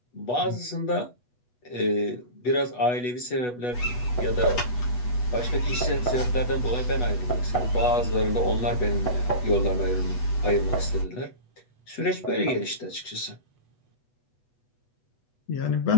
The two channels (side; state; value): right; late; 8.2 ms